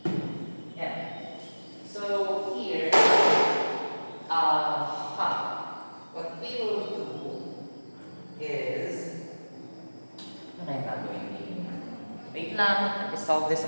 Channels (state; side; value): inverted; both; correlation -1.00